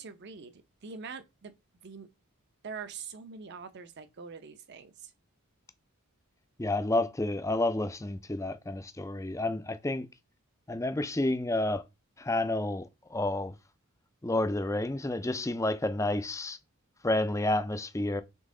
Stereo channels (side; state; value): both; normal; correlation 0.71